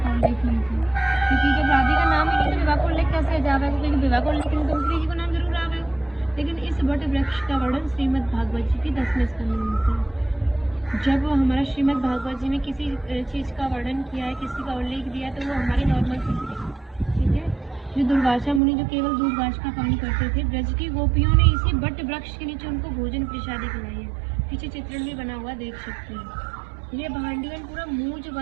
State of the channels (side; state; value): left; drops out; at 18.6 s